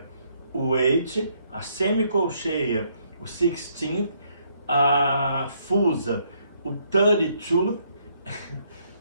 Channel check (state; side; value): inverted; both; correlation -0.71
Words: o eighth, a semicolcheia, o 16th, a fusa, o 32,